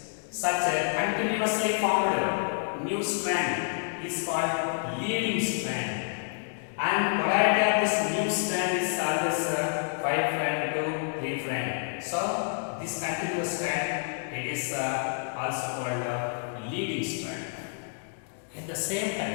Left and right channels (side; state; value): right; silent; digital silence